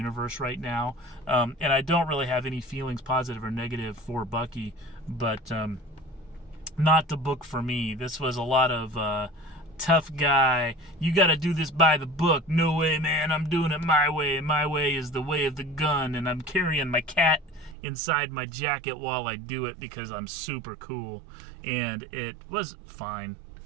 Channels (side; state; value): left; drops out; at 17.8 s